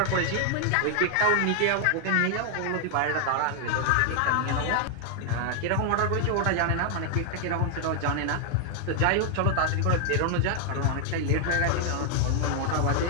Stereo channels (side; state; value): both; different; correlation 0.00